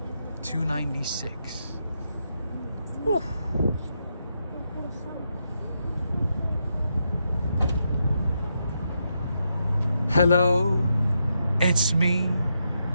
296. Whew. Hello, it's me.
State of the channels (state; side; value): inverted; both; correlation -0.82